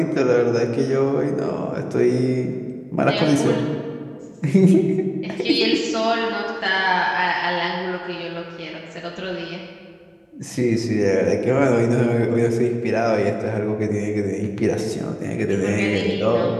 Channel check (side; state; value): both; identical; correlation 1.00